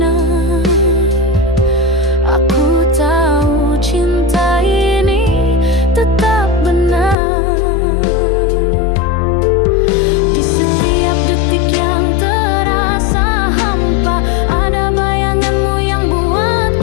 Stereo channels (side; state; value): right; drops out; at 7.2 s